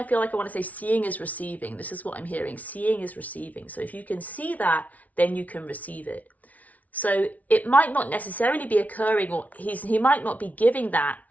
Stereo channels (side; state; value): right; late; 0.071 ms